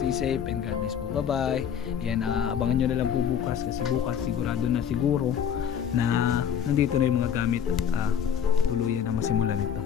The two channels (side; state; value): right; quieter; 8.3 dB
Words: safe and God bless po. Bye-bye. Ayan, abangan nyo na lang po bukas kasi bukas sigurado na siguro na nandito na yung mga gamit at tuluyan na masimulan ito.